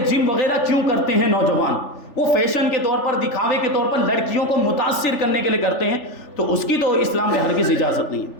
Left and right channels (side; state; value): right; late; 3.4 ms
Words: جم وغیرہ کیوں کرتے ہیں نوجوان، وہ فیشن کے طور پر، دکھاوے کے طور پر لڑکیوں کو متاثر کرنے کے لیے کرتے ہیں، تو اس کی تو اسلام میں ہرگز اجازت نہیں